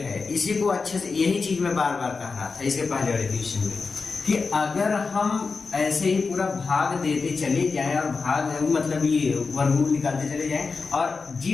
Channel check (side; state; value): right; quieter; 4.5 dB